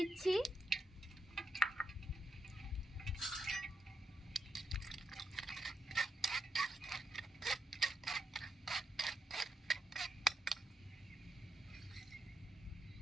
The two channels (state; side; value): normal; both; correlation 0.82